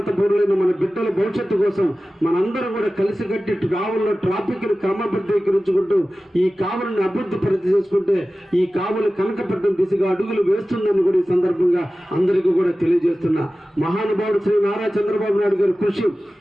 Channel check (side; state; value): both; normal; correlation 0.96